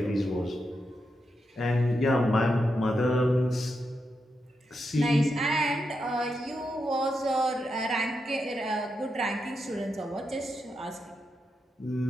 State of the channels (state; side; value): normal; both; correlation 0.85